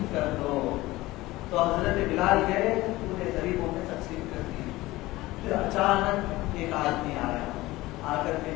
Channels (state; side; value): quieter; right; 18.7 dB